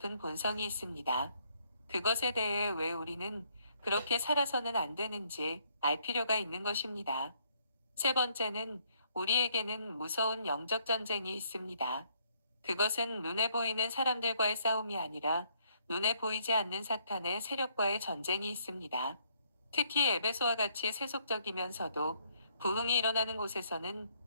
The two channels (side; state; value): both; inverted; correlation -0.68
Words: 본성이 있습니다. 그것에 대해 왜 우리는 그렇게 살아서는 안 되는지 알 필요가 있는 것입니다. 세 번째는 우리에게는 무서운 영적 전쟁이 있습니다. 그것은 눈에 보이는 사람들과의 싸움이 아니라 눈에 보이지 않는 사탄의 세력과의 전쟁이 있습니다. 특히 에베소와 같이 세속적이면서도 부흥이 일어나는 곳에서는